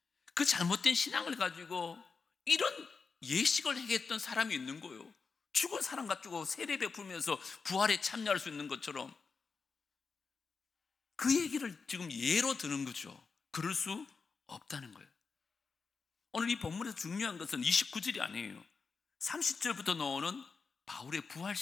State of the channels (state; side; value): quieter; right; 4.9 dB